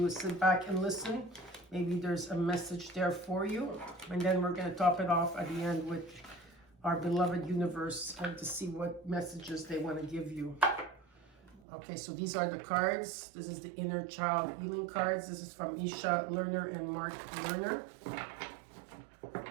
is sit back and listen. Maybe there's a message there for you. And then we're going to top it off at the end with our beloved universe to see what messages they want to give you. Okay, so these are the cards. This is the inner child healing cards. This is from Isha Lerner and Marc Lerner.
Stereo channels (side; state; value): left; drops out; at 11.6 s